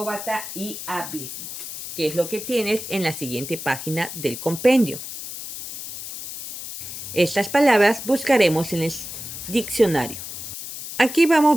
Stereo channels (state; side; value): noise; left; hiss, 9 dB below the sound